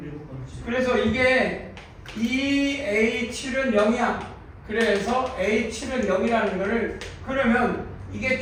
그래서 이게 이 A7은 0이야. 그래서 A7은 0이라는 거를 그러면 이게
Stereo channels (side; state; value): both; identical; correlation 1.00